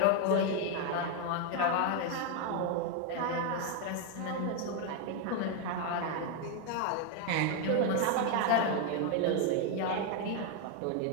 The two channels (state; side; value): different; both; correlation 0.01